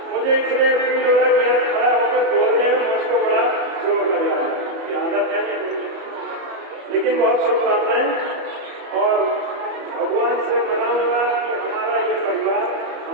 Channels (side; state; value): left; late; 34 ms